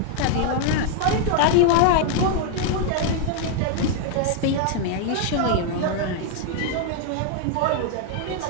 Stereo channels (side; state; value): both; different; correlation 0.00